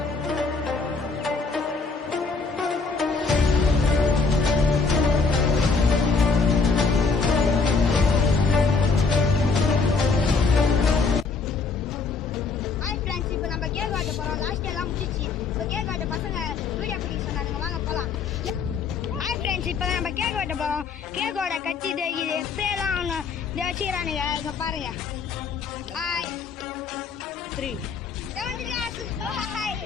நம்ம கேக் வெட்ட போறோம். கேக்கோட கட்சி இது ஸ்ப்ரேலாம் ஒன்று வச்சுக்கிறானுங்க. இங்க பாருங்க. ஹாய் 3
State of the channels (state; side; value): quieter; right; 4.6 dB